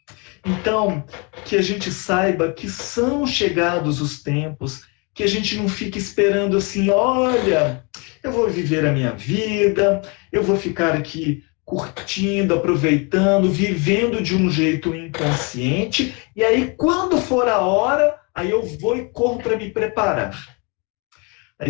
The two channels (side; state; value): right; quieter; 32.0 dB